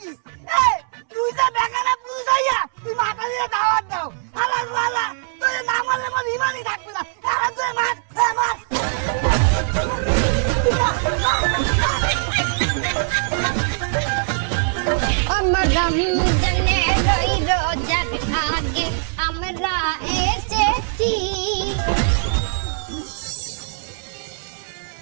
কি? এ তুই যা বেকারা পুরুষ হইয়া তুই মাথা দিয়ে দাওয়াত দাও। হালা বলা তুই না মারলে মন ইমানই থাকবে না। আরে তুই মার, মার। আমার রমজানে রই রোজার আগে আমরা এসেছি।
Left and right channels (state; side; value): silent; left; digital silence